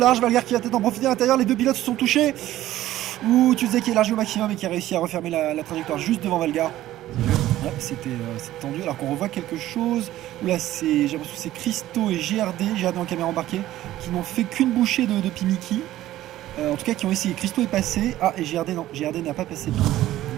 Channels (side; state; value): left; quieter; 14.4 dB